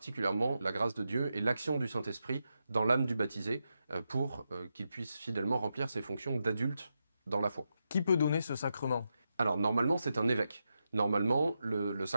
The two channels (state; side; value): inverted; both; correlation -0.86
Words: la grâce de Dieu et l'action du Saint-Esprit dans l'âme du baptisé, pour qu'il puisse fidèlement remplir ses fonctions d'adulte dans la foi. Qui peut donner ce sacrement? Alors, normalement, c'est un évêque. Normalement, le